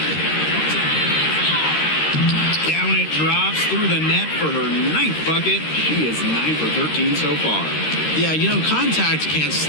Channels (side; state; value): right; late; 13 ms